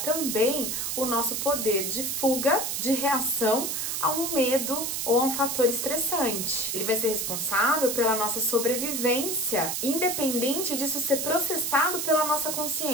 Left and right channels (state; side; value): noise; right; hiss, 2 dB below the sound